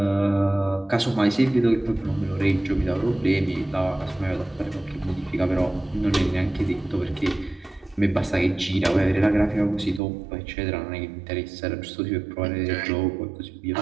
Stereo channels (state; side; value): drops out; left; at 10.0 s